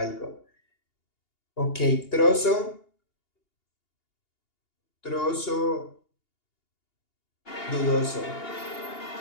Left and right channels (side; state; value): right; late; 2.8 ms